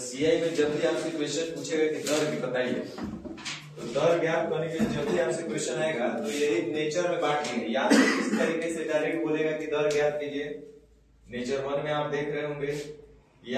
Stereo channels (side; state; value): both; identical; correlation 1.00